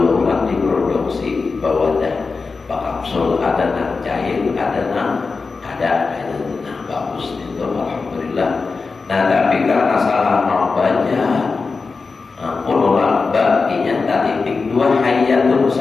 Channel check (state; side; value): quieter; right; 4.4 dB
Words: ulang, diproduksi bawadah kapsul, ada nak cair, ada nak bagus itu alhamdulillah. Nah tapi karena salah membaca ulama baginya titik 2 hayatun